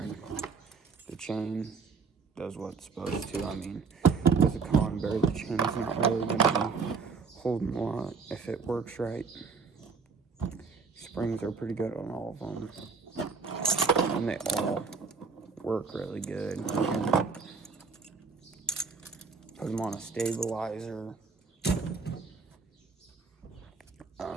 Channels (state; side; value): quieter; left; 4.9 dB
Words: The chain does what it's supposed to. I mean, with a conibear, the chain's not really going to be holding a lot if it works right. Springs are pretty good on all of them, and they all work really good. You can put them on a stabilizer,